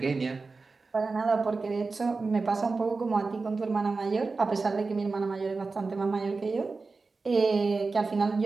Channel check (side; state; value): left; quieter; 4.0 dB